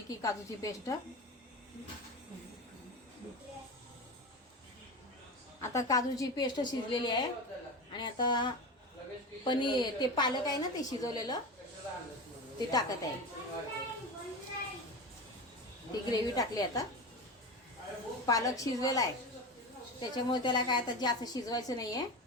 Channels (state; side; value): normal; both; correlation 0.25